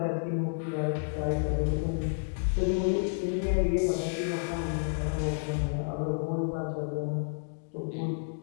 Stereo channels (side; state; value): right; silent; digital silence